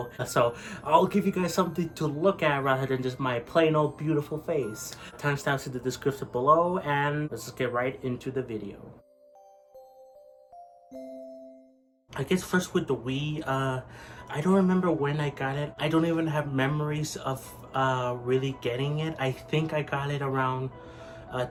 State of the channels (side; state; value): both; identical; correlation 1.00